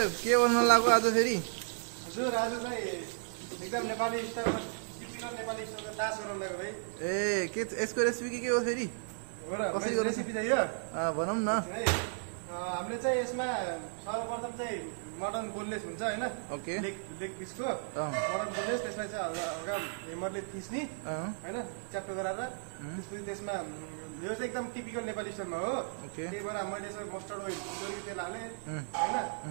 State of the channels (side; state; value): left; silent; 55 dB below the other